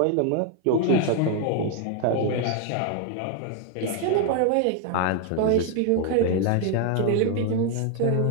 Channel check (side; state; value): both; different; correlation 0.00